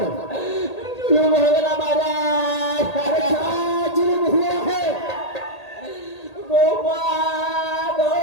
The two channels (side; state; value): right; late; 1.8 ms